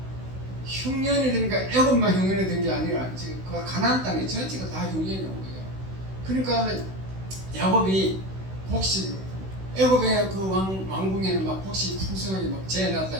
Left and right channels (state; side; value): late; left; 16 ms